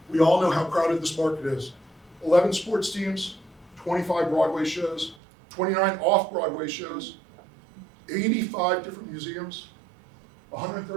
We all know how crowded this market is. 11 sports teams, 25 Broadway shows, 29 off-Broadway shows, 85 different museums,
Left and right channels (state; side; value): drops out; left; at 5.2 s